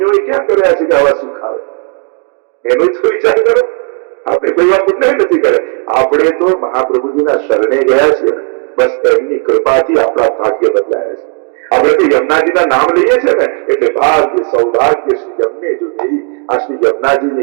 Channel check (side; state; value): left; quieter; 36.8 dB